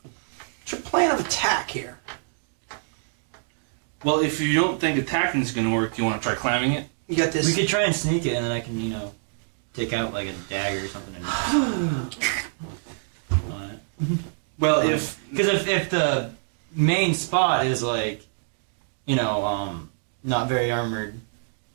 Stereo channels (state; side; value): silent; left; digital silence